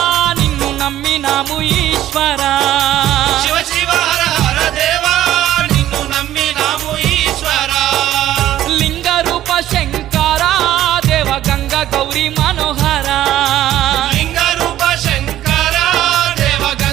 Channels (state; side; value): quieter; left; 13.0 dB